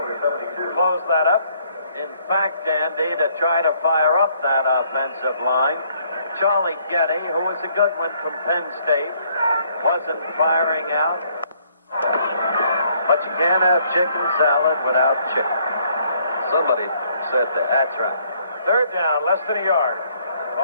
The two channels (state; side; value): inverted; both; correlation -0.66